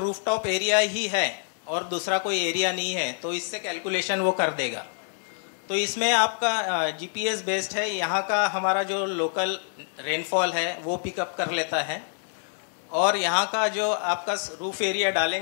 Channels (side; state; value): right; silent; digital silence